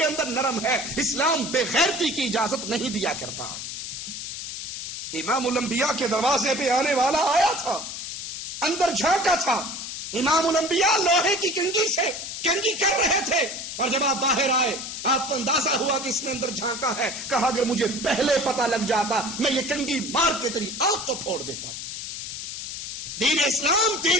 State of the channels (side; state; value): left; noise; hiss, 7 dB below the sound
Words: اندر نرم ہے، اسلام بے غیرتی کی اجازت نہیں دیا کرتا۔ امام الانبیاء کے دروازے پہ آنے والا آیا تھا، اندر جھانکا تھا، امام الانبیاء لوہے کی کنگھی سے کنگھی کر رہے تھے، اور جب آپ باہر آئے آپ کو اندازہ ہوا کہ اس نے اندر جھانکا ہے، کہا اگر مجھے پہلے پتہ لگ جاتا میں یہ کنگھی مار کے تیری آنکھ کو پھوڑ دیتا۔ دین اسلام